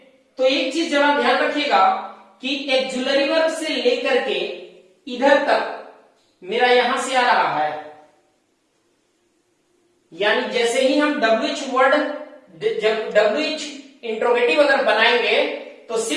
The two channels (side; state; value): both; identical; correlation 1.00